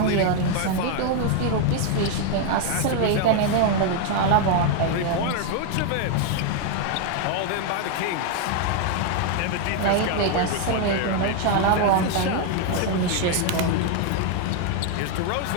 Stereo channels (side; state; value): both; different; correlation 0.01